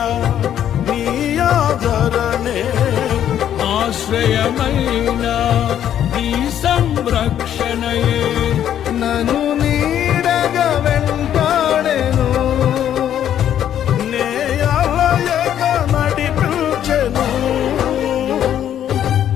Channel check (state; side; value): quieter; right; 10.4 dB